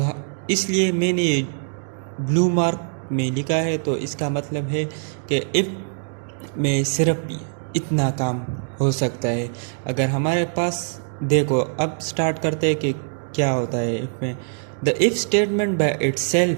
इसलिए मैंने ब्लू मार्क में लिखा है। तो इसका मतलब है कि इफ़ में सिर्फ इतना काम हो सकता है। अगर हमारे पास देखो, अब स्टार्ट करते हैं कि क्या होता है इफ़ में। The if statement by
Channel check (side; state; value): left; silent; digital silence